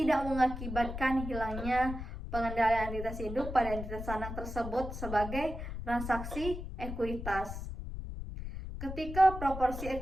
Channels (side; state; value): left; noise; rumble, 7 dB below the sound